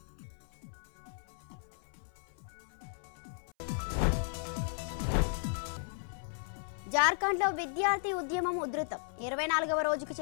జార్ఖండ్ లో విద్యార్థి ఉద్యమం ఉధృతం. 24వ రోజుకు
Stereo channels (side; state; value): right; silent; 54 dB below the other